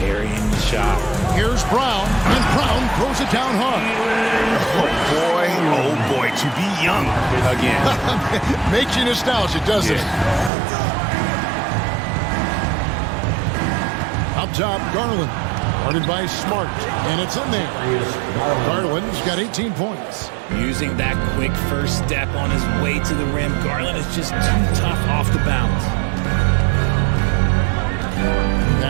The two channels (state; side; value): drops out; left; at 10.5 s